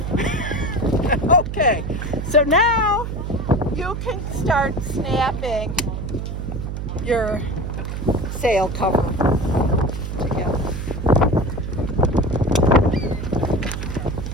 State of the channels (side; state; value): right; noise; hum, 5 dB below the sound